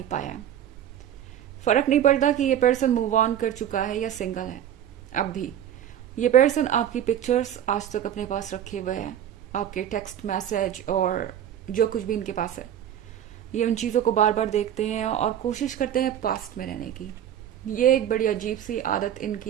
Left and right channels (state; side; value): quieter; left; 10.5 dB